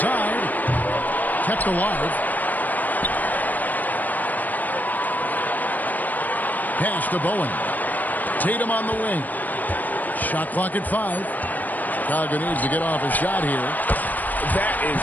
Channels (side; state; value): right; late; 0.083 ms